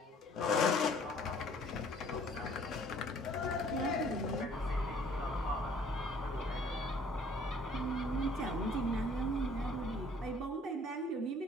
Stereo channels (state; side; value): normal; both; correlation 0.56